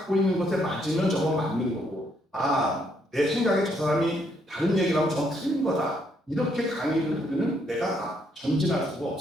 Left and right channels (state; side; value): normal; both; correlation 0.73